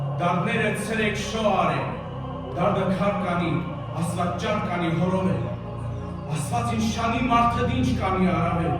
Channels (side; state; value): both; identical; correlation 1.00